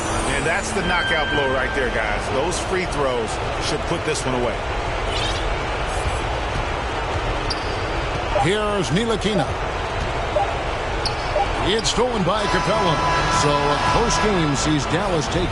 that's the knockout blow right there, guys. Those free throws should put this one away. Here's Ntilikina. It's stolen by Capella. So post-game sees Dallas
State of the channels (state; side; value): identical; both; correlation 1.00